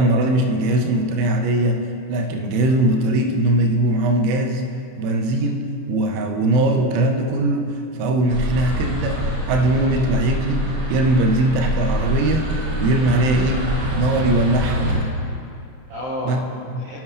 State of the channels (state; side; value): late; left; 31 ms